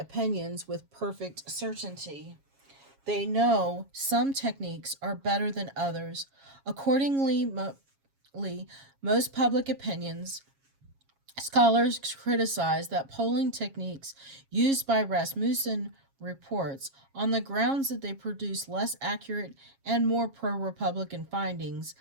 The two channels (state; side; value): late; left; 7.3 ms